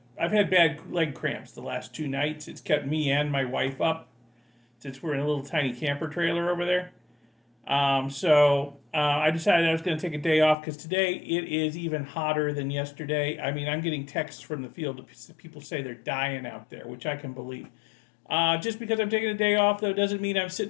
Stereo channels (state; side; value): drops out; right; at 10.6 s